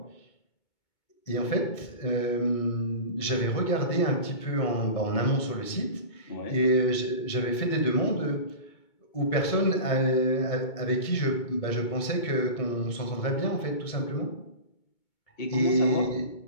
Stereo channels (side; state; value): right; late; 2.2 ms